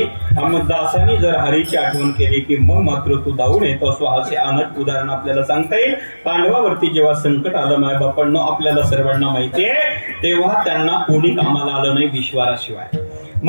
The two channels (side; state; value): both; inverted; correlation -1.00